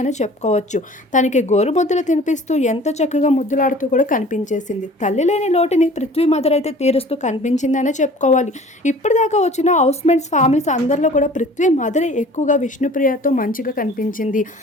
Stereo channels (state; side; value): normal; both; correlation 0.47